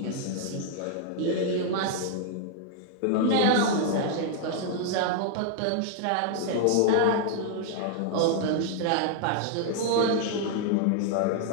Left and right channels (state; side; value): different; both; correlation 0.00